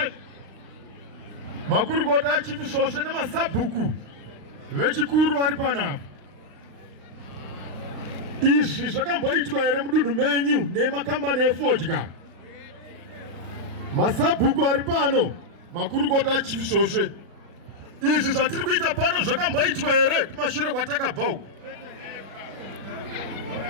Makurukota achipi shoshe nemasabhuku vechikuru vari pano apa. Izvi zvakamboitwa here mudunhu menyu nemakambani efodya? Masabhuku ari pano, makurukota achipi shoshe. Izvi zvatiri kuita pano zvakamboitwa here kumashure kwatakabva uko?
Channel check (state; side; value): late; left; 36 ms